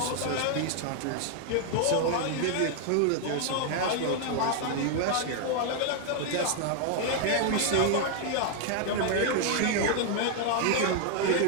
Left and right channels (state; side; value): different; both; correlation 0.00